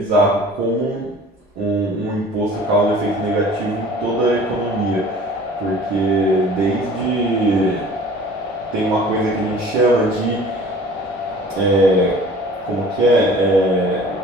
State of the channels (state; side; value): normal; both; correlation 0.47